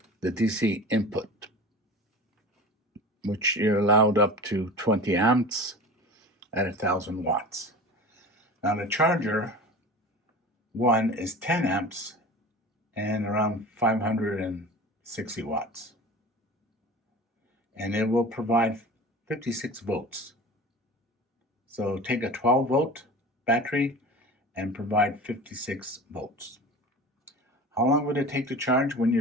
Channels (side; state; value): both; normal; correlation 0.36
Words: the DC input, which you're allowed up to 20 amps at 1000 watts. Now the Charger 1 is 10 amps and around 560 watts. And it will provide 56 volts. So take a 12 volt battery and provide 56 volts. How long would it take to charge when